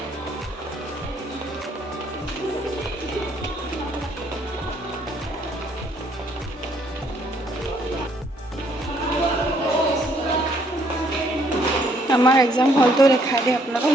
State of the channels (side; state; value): both; normal; correlation 0.67